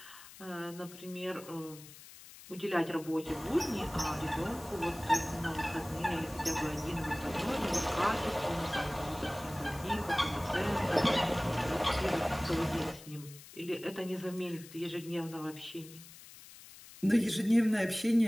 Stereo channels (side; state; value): left; noise; hiss, 18 dB below the sound